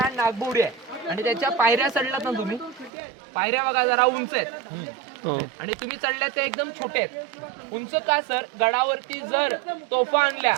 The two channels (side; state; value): left; drops out; at 2.9 s